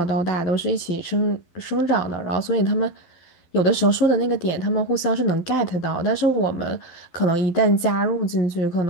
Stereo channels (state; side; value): late; right; 12 ms